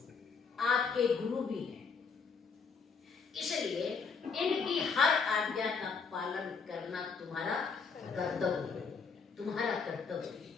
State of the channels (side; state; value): right; quieter; 5.3 dB